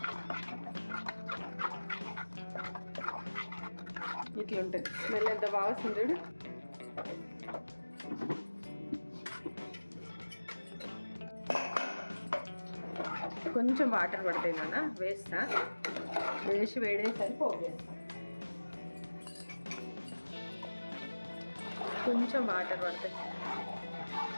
ఇట్లా ఉంటుంది. స్మెల్ ఎంత బాగా వస్తుంది చూడు. కొంచెం వాటర్ పడతాయి నాన్న, వేస్తా. వేసి వేడేసరి పోపు వేస్తా. కొంచెం వాటర్ పడతాయి.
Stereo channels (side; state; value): both; inverted; correlation -1.00